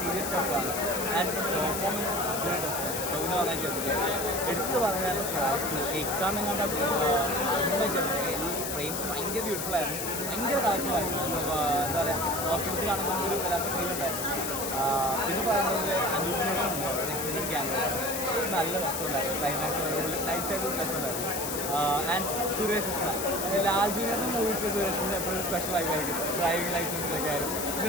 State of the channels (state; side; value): noise; left; hiss, 4 dB below the sound